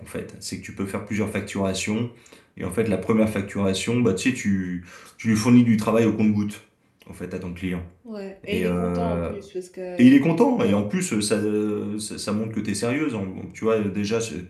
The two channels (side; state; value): both; identical; correlation 1.00